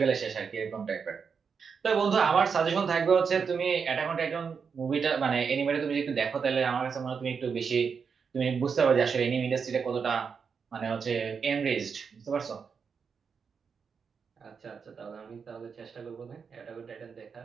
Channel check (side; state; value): left; quieter; 6.0 dB